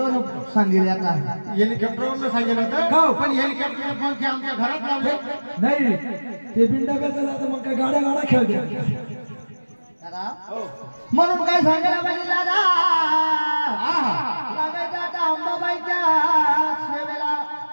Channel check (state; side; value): inverted; both; correlation -1.00